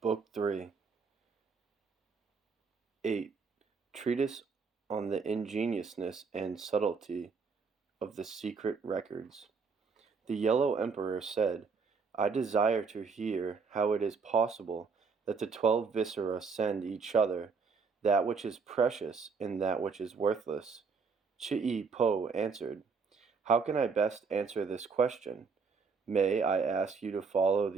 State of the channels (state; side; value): quieter; left; 5.1 dB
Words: Book 3, 8. Treatise on the ingeniousness and subtlety of the secret records. The Yellow Emperor said, I desire to hear how it is possible that the 12 Viscera send each other that which is precious and that which is worthless. Chi-Po answered, How can I best answer this question? May I ask you to follow